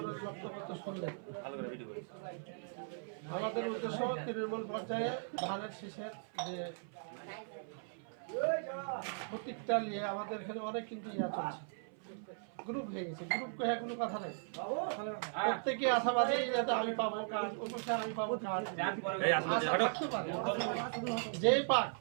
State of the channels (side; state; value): left; silent; 52 dB below the other